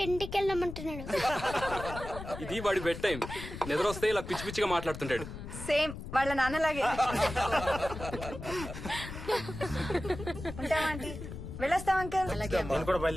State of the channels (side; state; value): left; noise; rumble, 10 dB below the sound